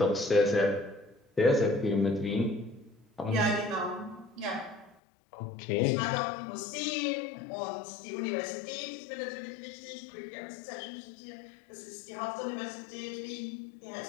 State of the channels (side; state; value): right; drops out; at 5.0 s